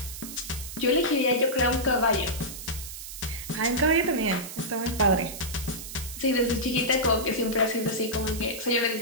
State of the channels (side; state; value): right; noise; hiss, 10 dB below the sound